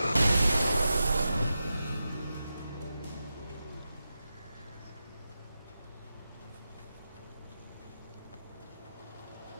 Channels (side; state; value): both; inverted; correlation -0.91